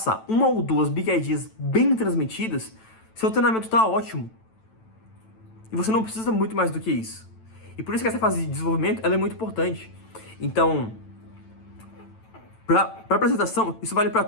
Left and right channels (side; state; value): right; late; 9.0 ms